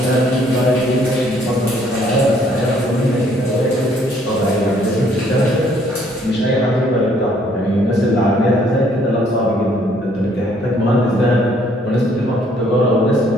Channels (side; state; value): both; normal; correlation 0.64